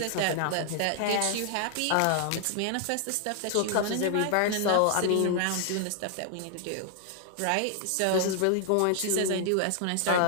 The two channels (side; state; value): both; different; correlation 0.00